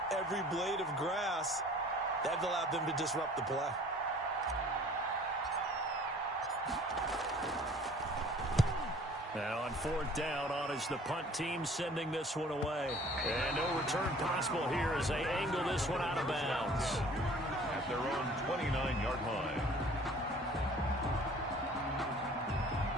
every blade of grass. That allowed them to disrupt the play. Now on 4th down, on is the punt team sending this one away. And no return possible here as they angle this one out of bounds. At their own 29-yard line.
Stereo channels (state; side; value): normal; both; correlation 0.51